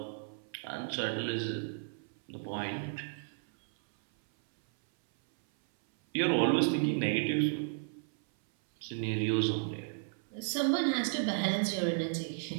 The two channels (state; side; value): silent; left; 56 dB below the other